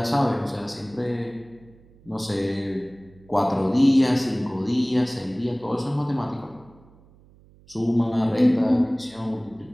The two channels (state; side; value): noise; right; hum, 27 dB below the sound